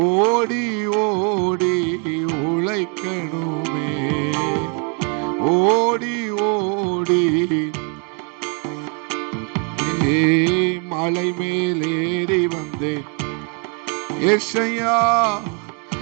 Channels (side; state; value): left; quieter; 37.7 dB